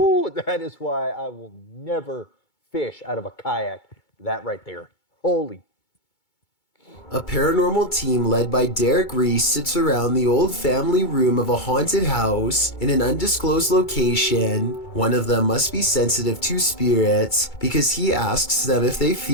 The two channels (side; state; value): right; late; 2.2 ms